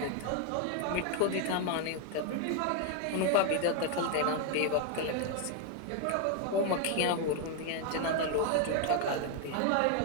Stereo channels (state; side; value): different; both; correlation 0.01